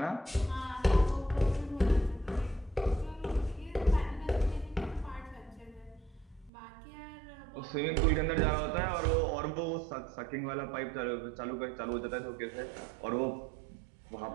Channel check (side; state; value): left; drops out; at 6.5 s